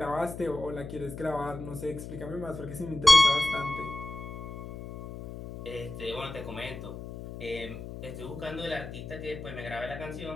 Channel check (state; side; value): noise; left; hum, 10 dB below the sound